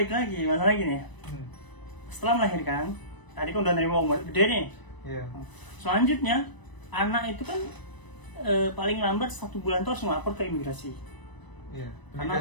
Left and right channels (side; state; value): right; late; 1.0 ms